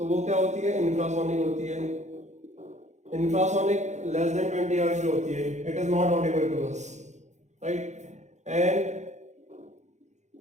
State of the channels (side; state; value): left; late; 0.34 ms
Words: वो क्या होती है? इंफ्रासोनिक होती है. इंफ्रासोनिक लेस देन 20 हर्ट्ज जो होती है, it is not audible to us. Right, and